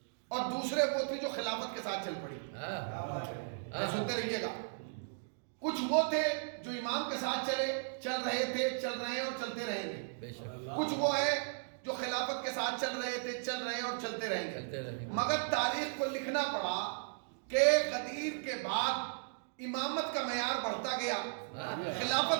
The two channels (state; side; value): silent; left; digital silence